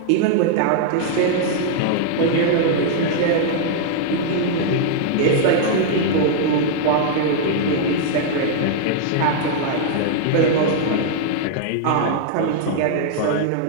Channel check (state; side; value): different; both; correlation -0.01